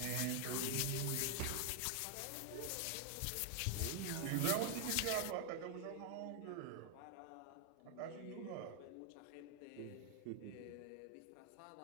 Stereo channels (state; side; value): different; both; correlation 0.00